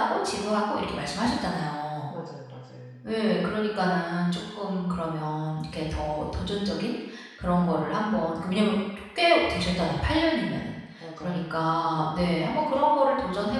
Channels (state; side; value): identical; both; correlation 1.00